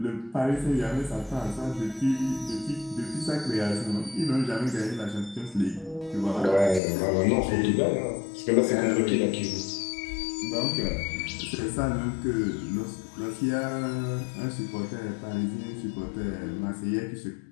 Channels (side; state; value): right; drops out; at 6.8 s